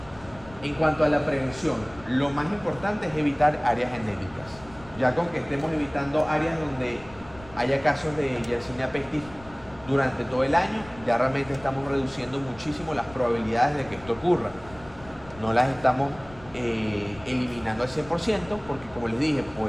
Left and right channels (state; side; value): noise; left; rumble, 20 dB below the sound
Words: En cuanto a la prevención, lo más importante es evitar áreas endémicas. Ya con que estemos evitando áreas donde haya casos de Yersinia pestis durante todo el año, ya realmente estamos reduciendo muchísimo las probabilidades de que esto ocurra. No las estamos eliminando al 100% porque, como les dije,